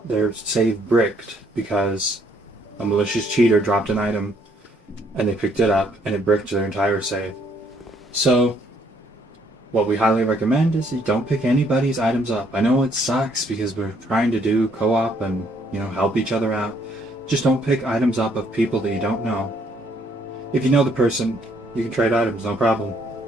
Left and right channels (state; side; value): normal; both; correlation 0.67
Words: their save bricked because a malicious cheater dropped an item and they picked it up and it bricked their entire save. So what we highly recommend is you don't pick anybody's items up. I know it sucks because we're trying to do co-op and, help each other out. Just don't pick items up of people that you don't know. If you know the person, you can trade items, no problem.